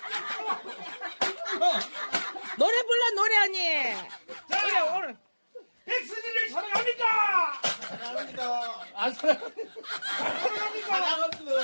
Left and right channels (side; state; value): both; inverted; correlation -1.00